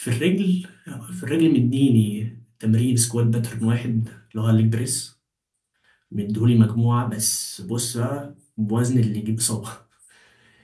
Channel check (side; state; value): both; identical; correlation 1.00